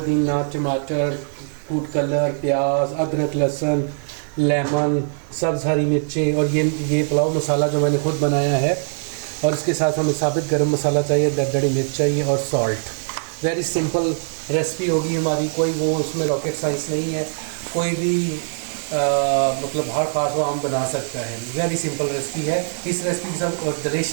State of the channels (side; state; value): left; silent; digital silence